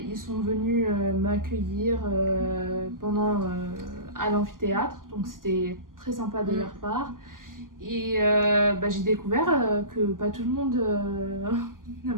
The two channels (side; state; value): left; late; 0.91 ms